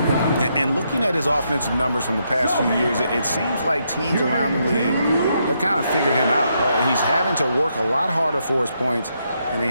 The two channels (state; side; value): inverted; both; correlation -0.78